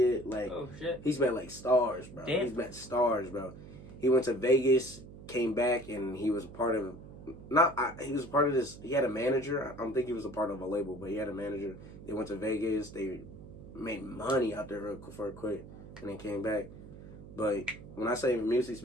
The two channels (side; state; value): right; noise; hum, 15 dB below the sound